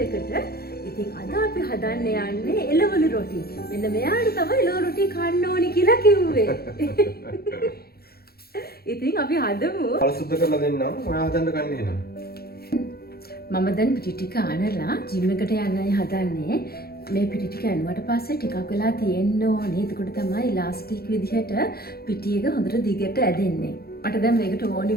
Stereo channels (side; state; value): right; late; 0.45 ms